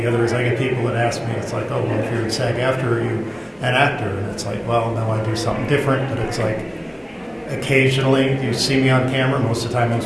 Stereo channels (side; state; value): both; identical; correlation 1.00